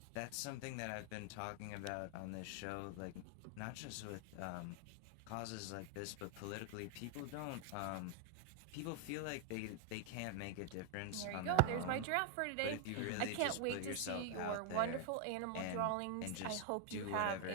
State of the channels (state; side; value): different; both; correlation 0.00